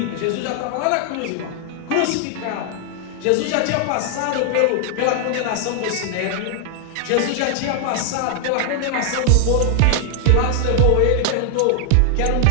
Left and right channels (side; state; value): both; different; correlation 0.00